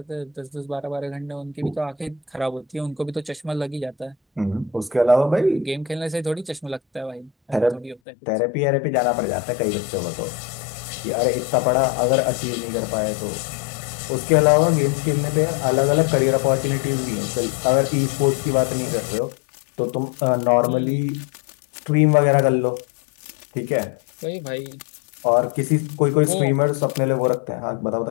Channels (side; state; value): right; drops out; at 8.0 s